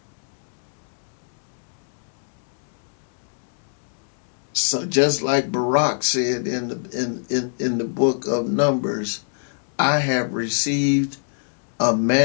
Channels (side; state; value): right; silent; 63 dB below the other